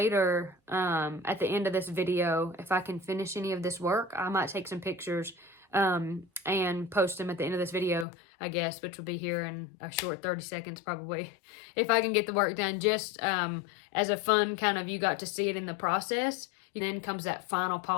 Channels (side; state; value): right; drops out; at 8.1 s